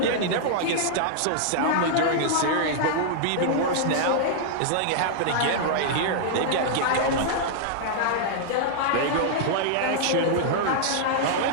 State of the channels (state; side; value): different; both; correlation -0.01